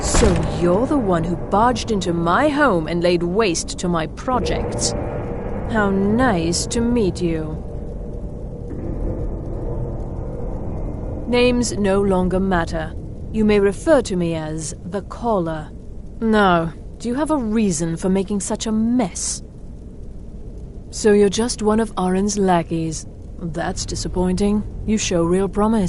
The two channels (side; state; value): both; identical; correlation 1.00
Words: So you're the one who barged into my home and laid waste to my projects. How nice to meet you. Names no longer matter. You may refer to me as the Caller. Now, do you have a reason for making such a mess? So you're just one of Arin's lackeys. That's disappointing. You show real